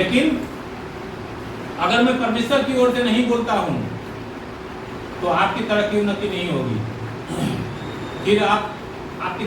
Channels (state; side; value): identical; both; correlation 1.00